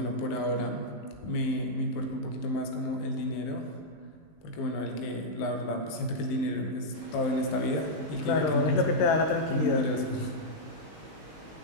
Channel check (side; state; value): right; late; 19 ms